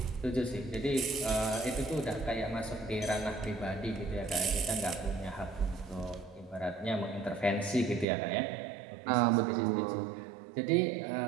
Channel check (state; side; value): drops out; left; at 8.1 s